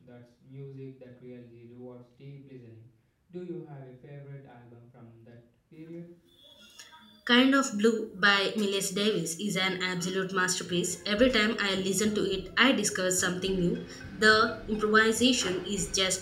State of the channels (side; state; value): both; identical; correlation 1.00